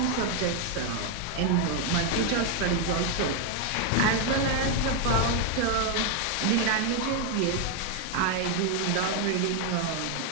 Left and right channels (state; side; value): different; both; correlation 0.01